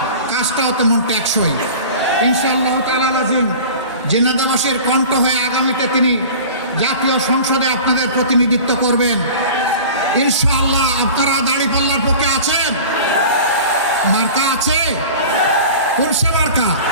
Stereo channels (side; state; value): both; inverted; correlation -0.38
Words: কাজটাও তেমন টেকসই। ইনশাআল্লাহ তাআলা আজিম ঝিনাইদহবাসীর কণ্ঠ হয়ে আগামীতে তিনি জাতীয় সংসদে আপনাদের প্রতিনিধিত্ব করবেন। ইনশাআল্লাহ আপনারা দাড়িপাল্লার পক্ষে আছেন? মার্কা আছে? কোন সে মার্কা?